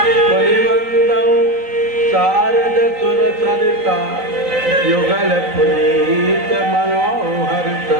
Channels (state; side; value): late; left; 3.9 ms